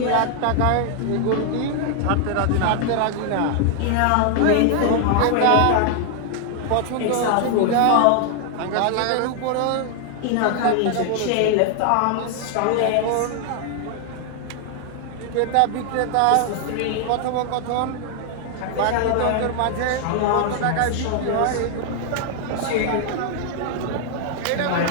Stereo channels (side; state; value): both; different; correlation 0.00